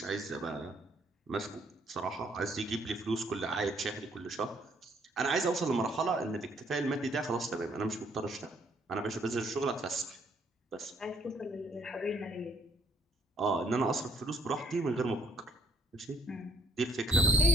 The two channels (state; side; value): normal; both; correlation 0.66